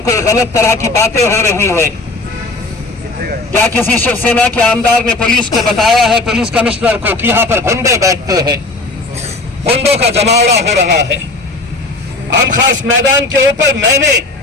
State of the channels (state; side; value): quieter; right; 3.1 dB